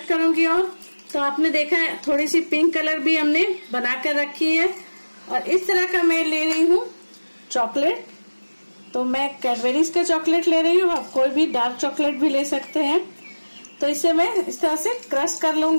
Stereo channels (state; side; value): inverted; both; correlation -1.00